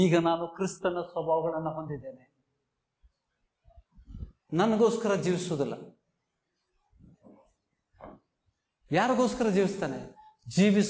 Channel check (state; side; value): identical; both; correlation 1.00